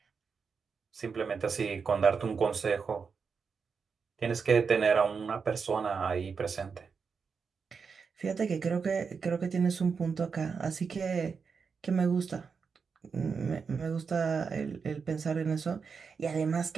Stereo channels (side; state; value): left; quieter; 5.6 dB